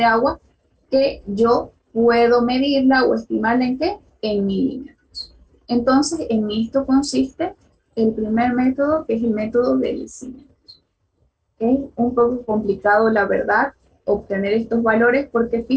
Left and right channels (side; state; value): both; identical; correlation 1.00